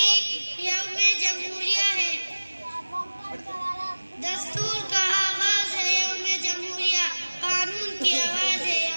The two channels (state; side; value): inverted; both; correlation -1.00